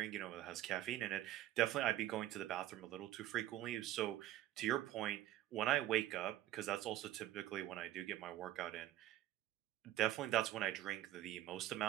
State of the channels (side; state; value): left; quieter; 13.8 dB